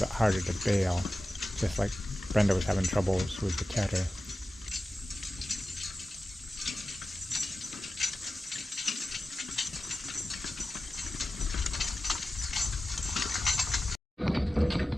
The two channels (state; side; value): normal; both; correlation 0.95